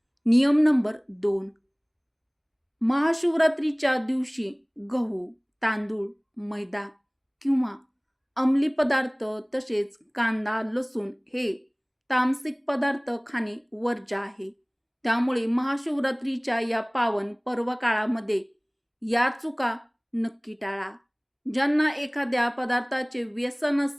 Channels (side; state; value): both; identical; correlation 1.00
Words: नियम नंबर 2, महाशिवरात्रीच्या दिवशी गहू, तांदूळ, मैदा किंवा अंमली पदार्थ तसेच कांदा, लसूण हे तामसिक पदार्थ खाणे वर्ज्य आहे. त्यामुळे महाशिवरात्रीच्या या पावन पर्व काळामध्ये या चुका नक्की टाळा. ज्यांना एखाद्या पदार्थाचे व्यसन